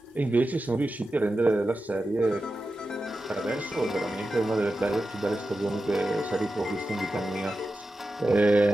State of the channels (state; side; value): normal; both; correlation 0.92